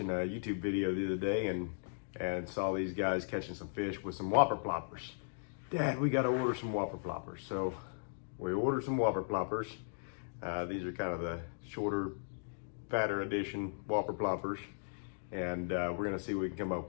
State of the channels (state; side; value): silent; right; digital silence